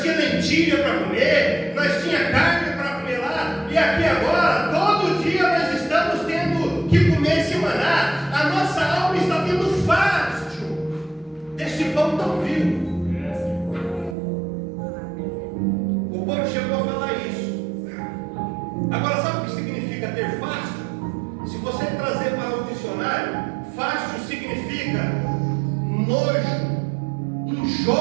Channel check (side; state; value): left; drops out; at 14.2 s